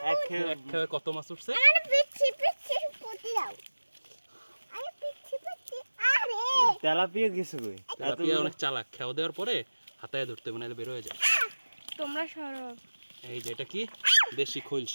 এক এক খেয়ে কত মাছ উঠছে। আমারে পিচ্ছি পিচ্ছি বুদ্ধি দাও। আরে পিচ্ছি পিচ্ছি, আরে তেলাপিয়া গেছে কই? তেলাপিয়া অনেক চালাক, খেয়ে দেওয়ার পরে হাতায় ধরতে হবে, নাহলে বের হয়ে যায়। তোমরা সরো। এই যে এটা কি, দেশি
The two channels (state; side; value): inverted; both; correlation -1.00